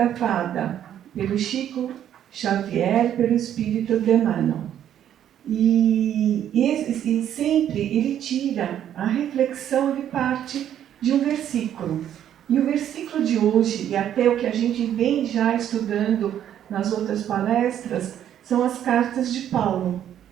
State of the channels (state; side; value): quieter; left; 10.4 dB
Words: pelo Chico Xavier, pelo Espírito de Emmanuel. E sempre ele tira a reflexão de parte de um versículo. E o versículo de hoje, e até o que a gente vem já estudando nas outras palestras, são as cartas de Paulo.